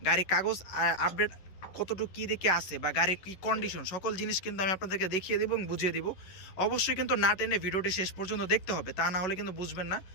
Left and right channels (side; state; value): right; late; 11 ms